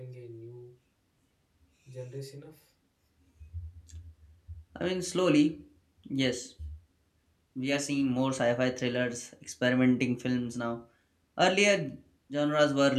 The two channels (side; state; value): both; identical; correlation 1.00